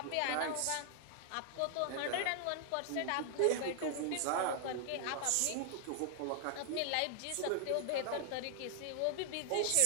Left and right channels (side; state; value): both; different; correlation 0.00